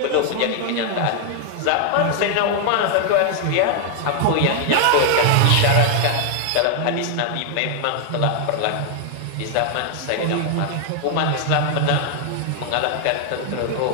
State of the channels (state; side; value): different; both; correlation 0.00